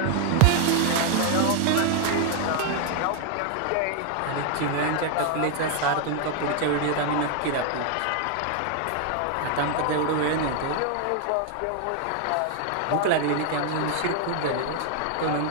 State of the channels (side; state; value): both; different; correlation 0.00